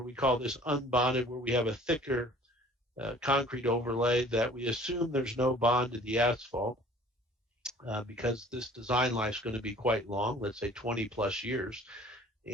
we call this unbonded, where we have a thicker concrete overlay that we assume there's no bond to the asphalt because this design life is going to be quite long, let's say 20 plus years.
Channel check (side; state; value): both; normal; correlation 0.51